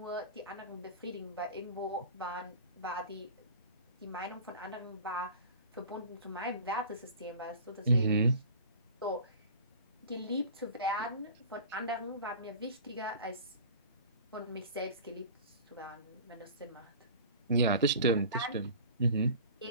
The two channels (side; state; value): both; inverted; correlation -0.39